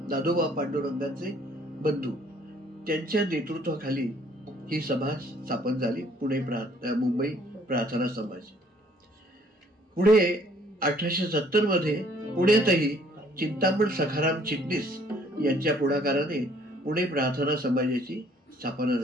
दादोबा पांडुरंगांचे बंधू, त्यांच्या नेतृत्वाखाली ही सभा स्थापन झाली. मुंबई प्रार्थना समाज. पुढे 1870 मध्ये पुण्यातही चिंतामण सखाराम चिटणीस यांच्या पुढाकाराने पुणे प्रार्थना समाजाची स्थापना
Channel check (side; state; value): both; normal; correlation 0.61